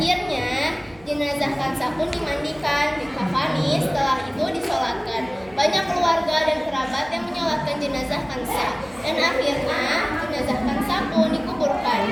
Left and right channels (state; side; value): noise; right; hum, 25 dB below the sound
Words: jenazah Kansa pun dimandikan, dikafani, setelah itu disolatkan. Banyak keluarga dan kerabat yang menyolatkan jenazah Kansa, dan akhirnya jenazah Kansa pun dikuburkan.